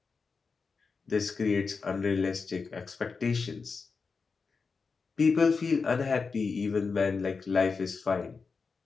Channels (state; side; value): quieter; right; 4.8 dB